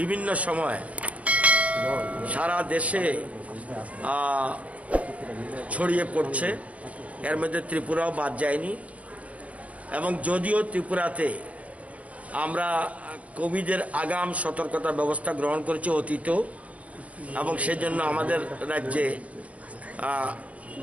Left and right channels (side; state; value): left; late; 0.066 ms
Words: সময় সারা দেশে ছড়িয়ে পড়ছে। এর মধ্যে ত্রিপুরাও বাদ যায়নি। এবং যদিও ত্রিপুরাতে আমরা কোভিডের আগাম সতর্কতা ব্যবস্থা গ্রহণ করেছি অতীতেও, এবং সেজন্য আমাদের রাজ্যে